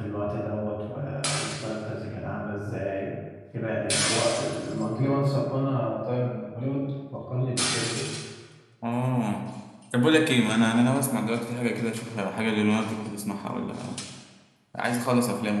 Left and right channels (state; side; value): identical; both; correlation 1.00